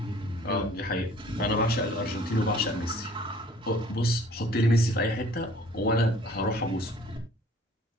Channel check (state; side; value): normal; both; correlation 0.54